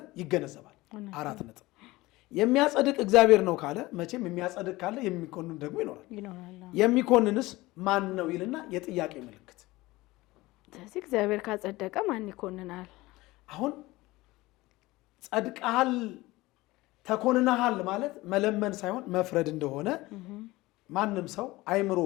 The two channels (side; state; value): right; quieter; 19.8 dB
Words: ይገነዘባል። 4 ነጥብ። የሚያጸድቅ እግዚአብሔር ነው ካለ መቼም የሚያጸድቅ ካለ የሚኮንን ደግሞ ይኖራል። የሚኮንንስ ማን ነው ይልና የጥያቄ ምልክት። ስለዚህ እግዚአብሔር ካጸደቀ ማን ይኮንናል? አሁን ጸድቀሃል ተኮንነሃል ማለት መለመን ሳይሆን መፍረድ እንደሆነ ማንም ሰው አይምሮ